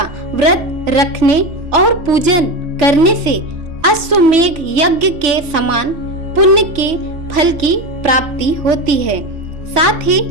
व्रत रखने और पूजन करने से अश्वमेघ यज्ञ के समान पुण्य के फल की प्राप्ति होती है। साथ ही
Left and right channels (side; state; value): left; late; 3.4 ms